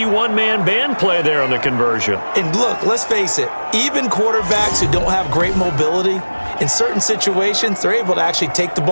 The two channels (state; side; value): inverted; both; correlation -1.00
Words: one-man band play there on the conversion. And look, let's face it, even quarterbacks who don't have great mobility, in certain situations, they're able to actually take the